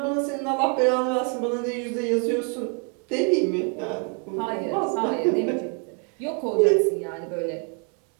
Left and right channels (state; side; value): quieter; left; 38.7 dB